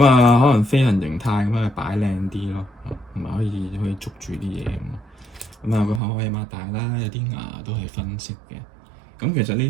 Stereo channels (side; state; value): left; drops out; at 6.0 s